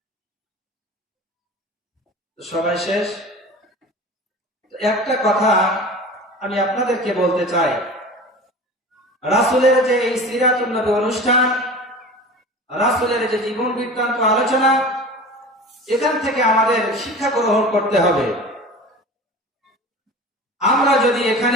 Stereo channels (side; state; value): both; normal; correlation 0.36